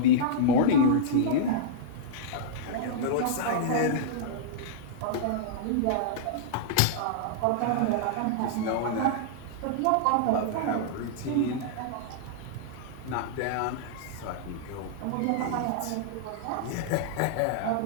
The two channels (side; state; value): both; different; correlation -0.02